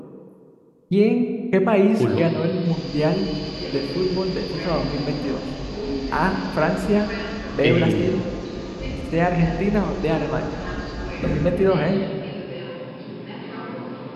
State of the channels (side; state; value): both; identical; correlation 1.00